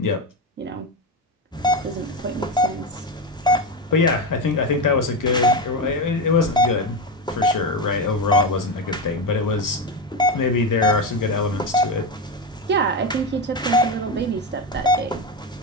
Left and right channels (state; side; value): normal; both; correlation 0.15